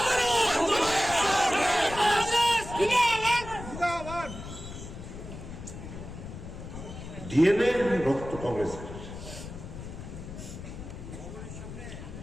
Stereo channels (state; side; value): noise; left; rumble, 11 dB below the sound